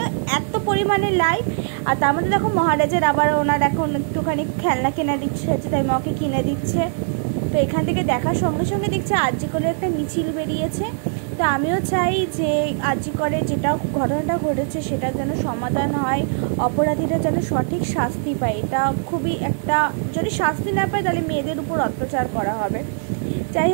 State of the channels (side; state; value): left; silent; digital silence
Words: এত পরিমাণে লাইট। আর তার মধ্যে দেখো মহারাজের আবার ওনার এখন একটুখানি খেলনা কেনা দিচ্ছে হচ্ছে, তাই মাকে কিনে দিচ্ছে। তো এখান থেকে দেখার সঙ্গে সঙ্গে দেখছে আরজিকরের একটা মিছিল বেরিয়েছে। তো আমিও চাই যে আরজিকরে যেটা ঘটনাটা ঘটেছে সেটা যেন সমাধান হয়, অপরাধীরা যেন সঠিক শাস্তি পায়। এটা খুবই একটা, যদি শাস্তি না পায় তাহলে মেয়েদের উপর অত্যাচার করা হবে। যাই